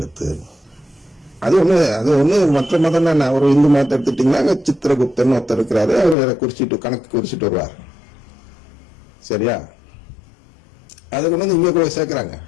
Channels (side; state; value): right; drops out; at 6.2 s